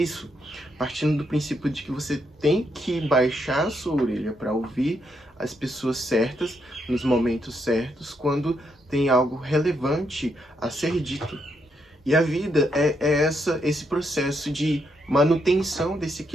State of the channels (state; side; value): normal; both; correlation 0.78